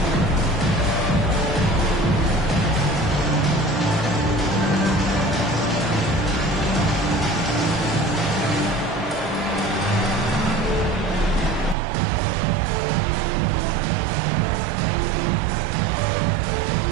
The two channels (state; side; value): drops out; left; at 11.8 s